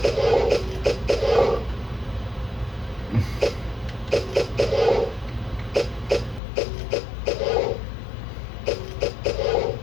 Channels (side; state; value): right; drops out; at 6.4 s